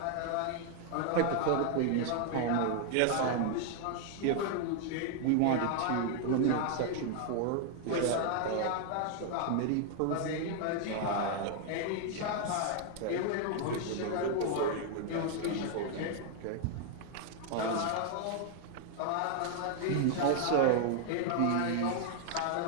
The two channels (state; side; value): different; both; correlation 0.00